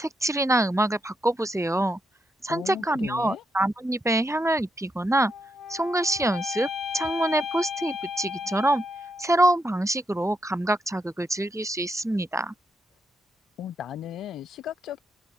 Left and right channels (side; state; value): both; normal; correlation 0.80